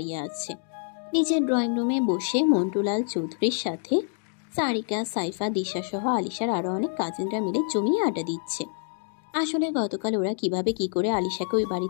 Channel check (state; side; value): silent; right; 59 dB below the other